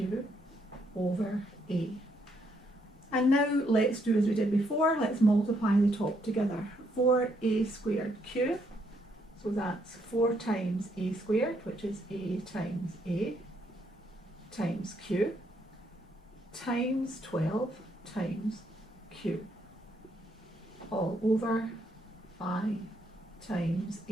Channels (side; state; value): both; normal; correlation 0.73